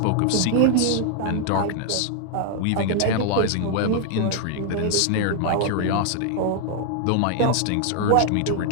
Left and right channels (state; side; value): different; both; correlation 0.00